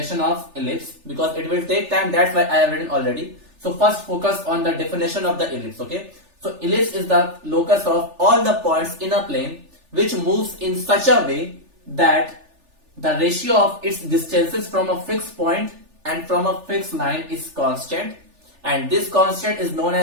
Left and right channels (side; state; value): left; late; 3.4 ms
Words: of ellipse because it will take time. That's why I have written already. So first focus on the definition of the ellipse. Okay. So ellipse is the locus of all the points in a plane which moves in such a way that the ratio of its distances from a fixed point and from a fixed line is constant, and this constant is known